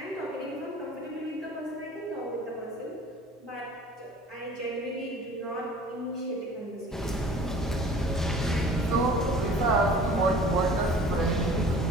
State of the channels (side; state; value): both; normal; correlation 0.46